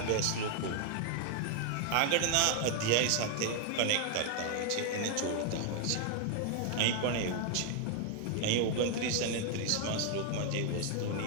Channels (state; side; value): different; both; correlation 0.00